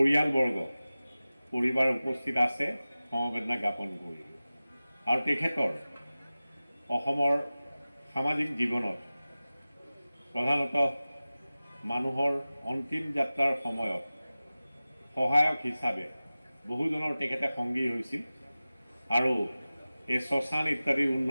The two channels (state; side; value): inverted; both; correlation -0.96